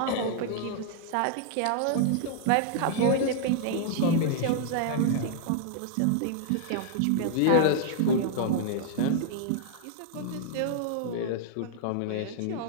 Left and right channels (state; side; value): different; both; correlation -0.01